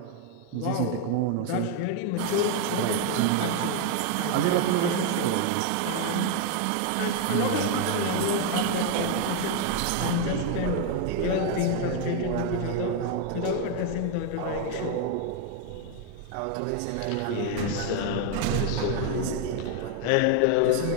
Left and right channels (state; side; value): different; both; correlation 0.01